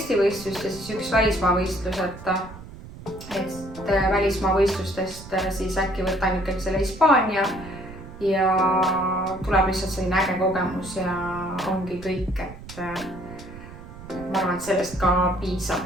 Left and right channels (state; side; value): noise; right; rumble, 15 dB below the sound